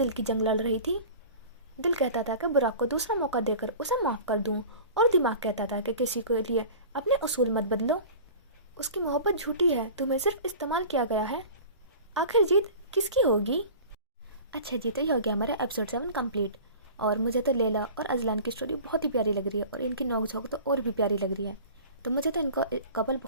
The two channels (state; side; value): inverted; both; correlation -0.39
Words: کی جنگ لڑ رہی تھی۔ دل کہتا تھا کہ براق کو دوسرا موقع دے کر اسے معاف کر دوں، اور دماغ کہتا تھا کہ کسی کے لیے اپنے اصول مت بدلو، اس کی محبت جھوٹی ہے، تمہیں صرف استعمال کیا گیا ہے۔ آخر جیت کس کی ہوگی؟ اچھا جی، تو یہ ہو گیا ہمارا ایپیسوڈ 7 کمپلیٹ، اور مجھے تو لیلا اور ازلان کی سٹوری بہت ہی پیاری لگ رہی ہے، اور ان کی نوک جھونک تو اور بھی پیاری لگ رہی ہے۔ تو مجھے تو ان کا کپل